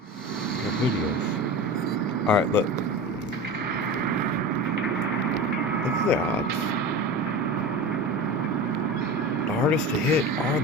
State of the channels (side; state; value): both; normal; correlation 0.30